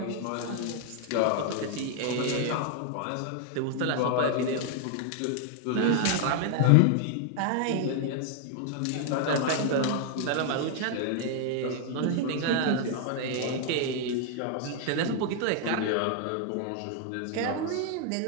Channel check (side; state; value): both; different; correlation 0.00